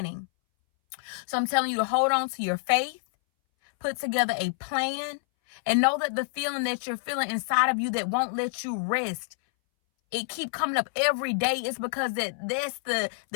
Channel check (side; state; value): right; silent; 60 dB below the other